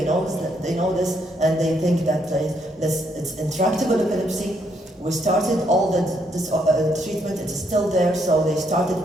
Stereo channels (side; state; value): both; normal; correlation 0.73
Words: know this, and they think that it's intractable epilepsy. We started all this treatment, it is still there, so they started